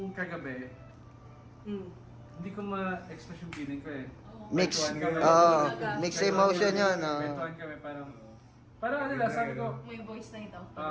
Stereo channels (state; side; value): identical; both; correlation 1.00